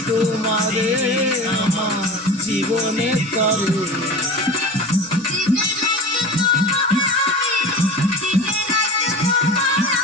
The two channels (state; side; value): normal; both; correlation 0.33